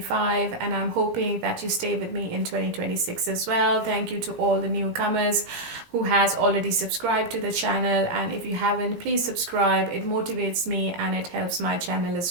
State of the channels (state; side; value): late; left; 17 ms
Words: and I'm hoping that you stay with me in 2026 as well. Thank you to all the newcomers who has already subscribed to the channel, and if you haven't, please subscribe. It motivates me and it helps my channel as